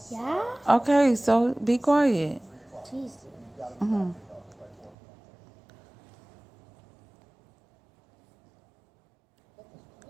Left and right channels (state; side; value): drops out; left; at 5.0 s